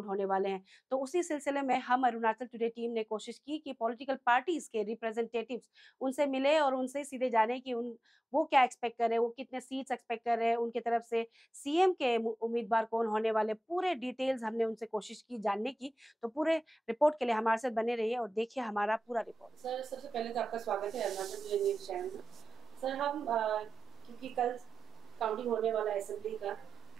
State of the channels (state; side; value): normal; both; correlation 0.94